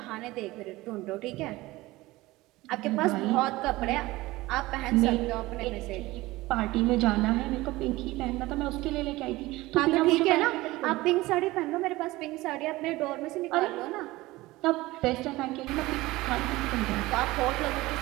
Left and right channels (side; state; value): left; quieter; 19.3 dB